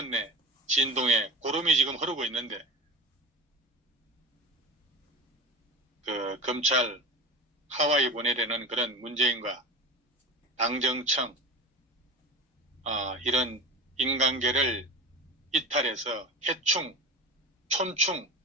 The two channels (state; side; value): normal; both; correlation 0.29